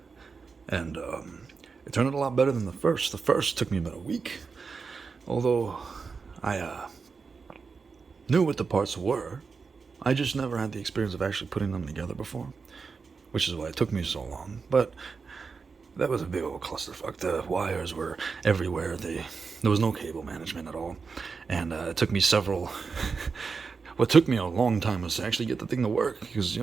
And it turned out a lot better than the first. The first took me about a week, although I knew what the parts were. I just never had the experience of actually putting them together before, which is why it took me so long. But that was a big old clusterfuck. The wires were everywhere. There was no cable management at all. And it took me several... what took me a long time was to actually get the thing to work, because,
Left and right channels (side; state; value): left; quieter; 5.0 dB